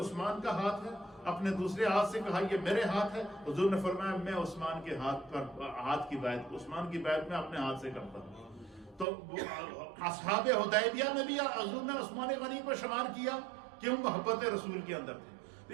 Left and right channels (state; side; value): drops out; left; at 9.1 s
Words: کا ہاتھ ہے، اپنے دوسرے ہاتھ سے کہا یہ میرے ہاتھ ہے، حضور نے فرمایا میں عثمان کے ہاتھ کی بیعت، عثمان کی بیعت میں اپنے ہاتھ سے کرتا ہوں۔ تو اصحاب حدیبیہ میں بھی حضور نے عثمان غنی کو شمار کیا، کیوں؟ محبت رسول کے اندر تھے۔